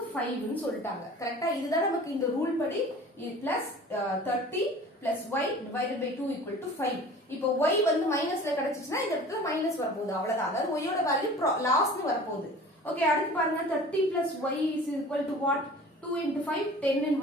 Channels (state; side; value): normal; both; correlation 0.43